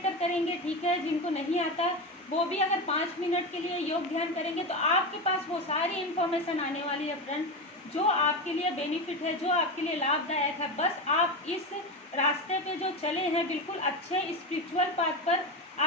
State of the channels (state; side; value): normal; both; correlation 0.18